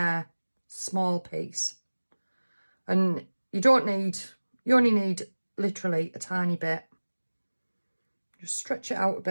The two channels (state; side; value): inverted; both; correlation -1.00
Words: small piece. And you only need literally a tiny bit. Just stretch it out a